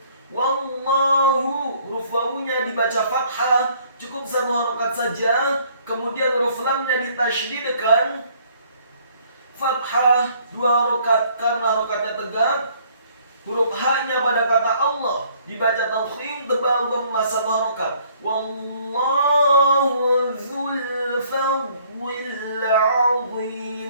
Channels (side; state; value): both; inverted; correlation -0.61